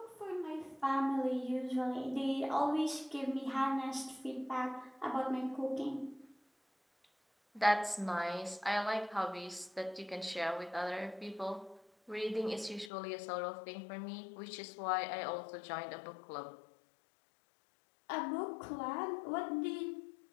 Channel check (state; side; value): drops out; right; at 12.9 s